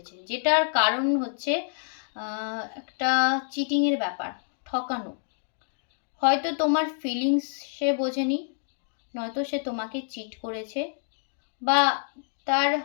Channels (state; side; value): silent; right; digital silence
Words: যেটার কারণ হচ্ছে একটা চিটিংয়ের ব্যাপার, ঠকানো। হয়তো তোমার ফিলিংস সে বোঝেনি, নয়তো সে তোমাকে চিট করেছে, বা তার